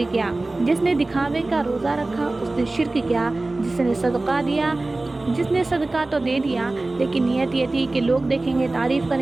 کیا، جس نے دکھاوے کا روزہ رکھا اس نے شرک کیا، جس نے صدقہ دیا، جس نے صدقہ تو دے دیا لیکن نیت یہ تھی کہ لوگ دیکھیں گے، تعریف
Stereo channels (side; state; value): left; quieter; 3.0 dB